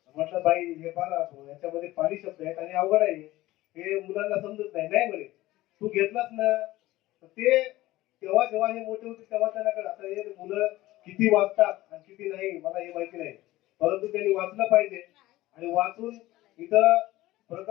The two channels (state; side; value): quieter; right; 17.2 dB